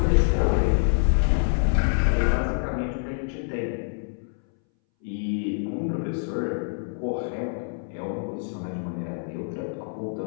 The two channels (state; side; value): silent; right; 61 dB below the other